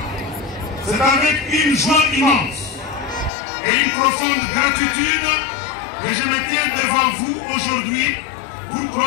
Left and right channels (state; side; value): drops out; right; at 3.3 s